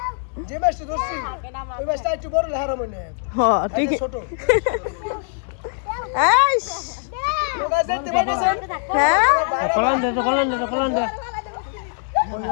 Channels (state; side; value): silent; right; 64 dB below the other